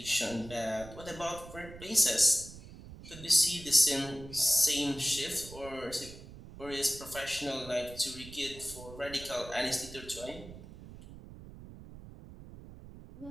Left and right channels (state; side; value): noise; right; rumble, 15 dB below the sound